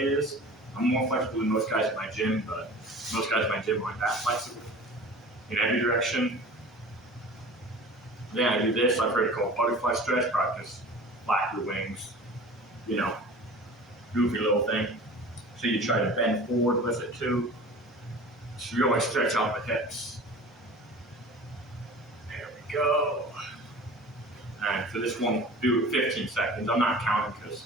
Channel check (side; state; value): both; normal; correlation 0.40